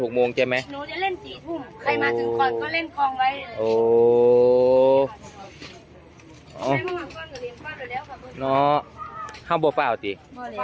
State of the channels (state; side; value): identical; both; correlation 1.00